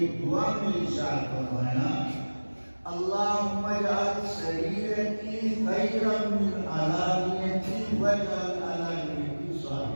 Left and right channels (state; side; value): inverted; both; correlation -1.00